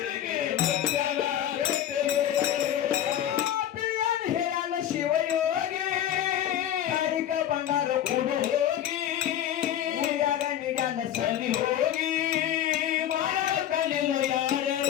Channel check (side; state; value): right; quieter; 11.1 dB